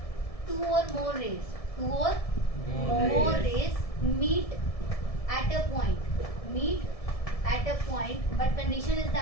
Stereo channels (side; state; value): right; late; 1.7 ms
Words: टू और more rays meet at a point, but condition is